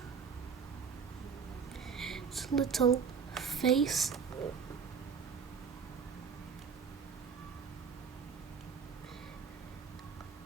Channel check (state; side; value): quieter; left; 6.3 dB